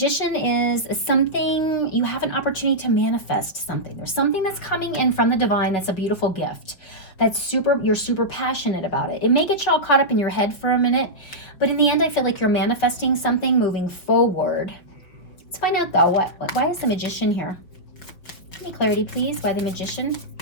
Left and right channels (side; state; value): right; late; 5.3 ms